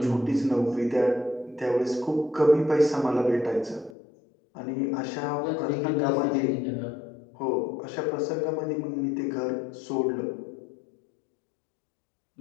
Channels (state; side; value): drops out; right; at 4.0 s